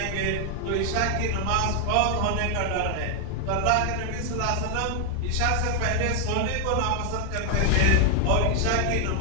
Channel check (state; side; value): different; both; correlation 0.00